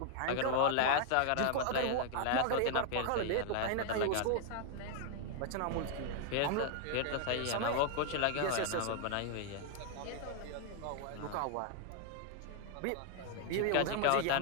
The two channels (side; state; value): both; different; correlation 0.00